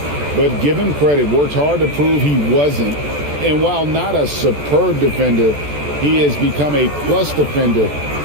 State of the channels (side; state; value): left; late; 14 ms